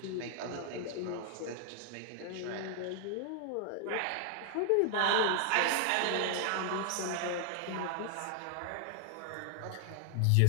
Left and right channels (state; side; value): different; both; correlation 0.00